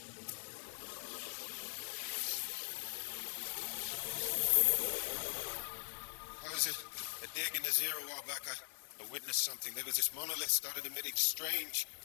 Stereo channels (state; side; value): silent; right; 51 dB below the other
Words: I was a dig in the zero a while back. I witnessed something. There was this monolith started emitting strange